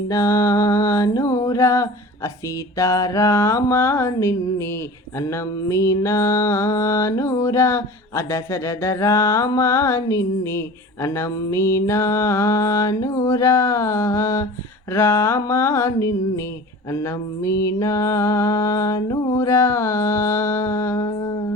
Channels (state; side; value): normal; both; correlation 0.38